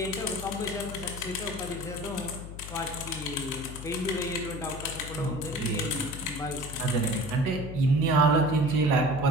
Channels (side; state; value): left; noise; hum, 10 dB below the sound